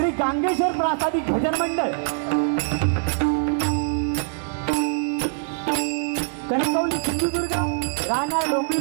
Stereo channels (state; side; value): silent; left; 63 dB below the other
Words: गांगेश्वर प्रासादिक भजन मंडळ कणकवली सिंधुदुर्ग राहणार